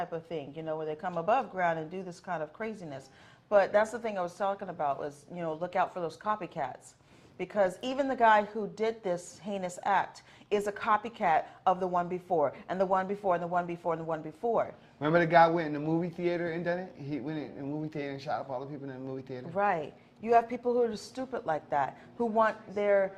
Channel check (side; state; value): both; identical; correlation 1.00